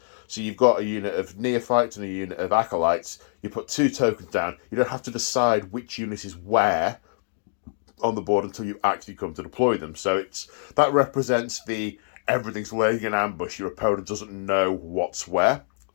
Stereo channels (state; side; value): silent; right; 61 dB below the other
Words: got a unit of neophytes and a unit of acolytes. You put 2 tokens down. You don't have to decide which unit is where on the board until you actually come to deploy them. So that represents the everything's laying in ambush. Your opponent doesn't know what's where